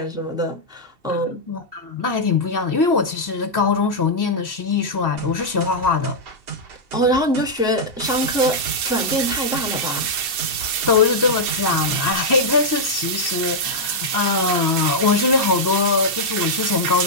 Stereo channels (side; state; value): left; late; 2.7 ms